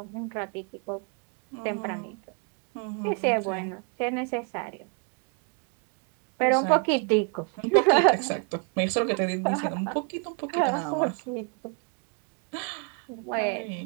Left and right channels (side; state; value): left; quieter; 36.0 dB